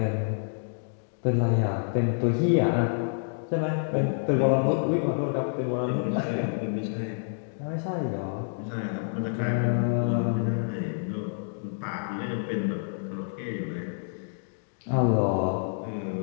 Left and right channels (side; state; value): right; silent; digital silence